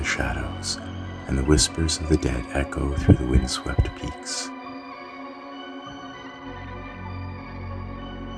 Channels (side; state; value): both; identical; correlation 1.00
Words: shadows, and the whispers of the dead echo through the windswept peaks.